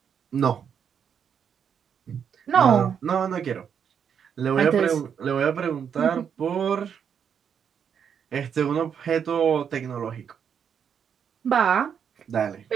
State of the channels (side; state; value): left; quieter; 7.7 dB